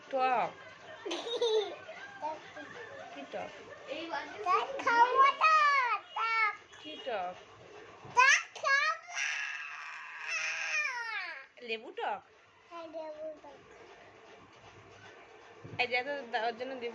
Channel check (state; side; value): identical; both; correlation 1.00